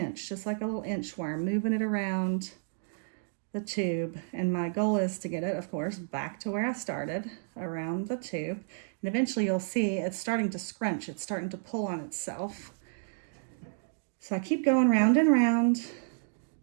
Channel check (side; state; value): left; silent; digital silence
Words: just like a little inchworm, moving it around the tube. And my goal is to get it, of course, back to where I started, around the tube. And eventually you'll see it's starting to scrunch. It's starting to pull on itself. So I keep going round and round